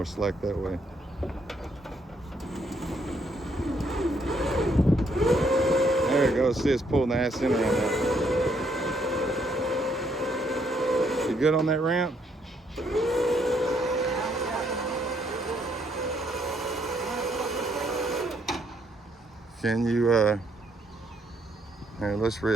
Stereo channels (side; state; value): both; normal; correlation 0.71